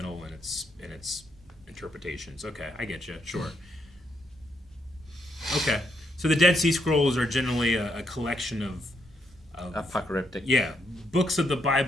in its interpretations. Okay, I get you. Sure. Okay. So the Dead Sea Scrolls are generally a collection of apocalyptic. books of the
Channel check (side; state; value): both; normal; correlation 0.77